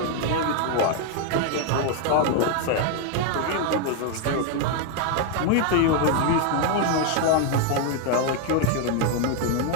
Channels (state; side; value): different; both; correlation 0.00